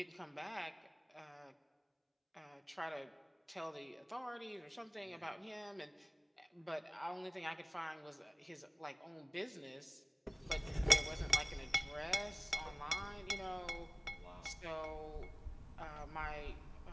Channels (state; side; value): identical; both; correlation 1.00